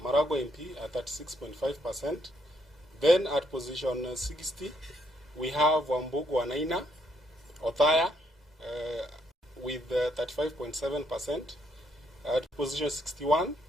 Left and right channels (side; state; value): both; normal; correlation 0.73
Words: Maragua MP, at 36.5%. Then at position 60, we have Wambugu Wanaina, Othaya, with 35.7%. At position 61,